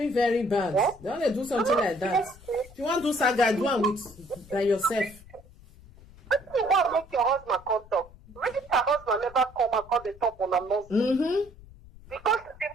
very bad. What? Don't they do something like that? If you want to do Saga, do one with by yourself. You want to make your husband come talk. Really, her husband never come and call the talk on a nonsense. Because they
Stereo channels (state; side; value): noise; left; rumble, 22 dB below the sound